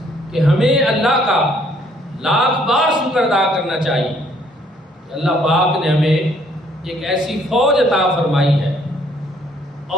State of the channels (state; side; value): normal; both; correlation 0.65